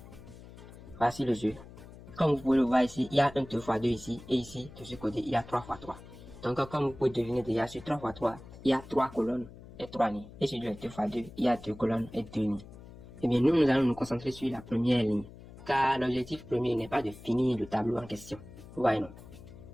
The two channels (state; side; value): noise; left; hum, 17 dB below the sound